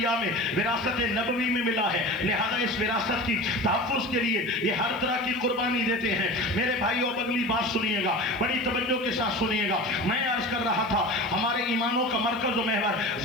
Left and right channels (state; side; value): noise; right; hiss, 26 dB below the sound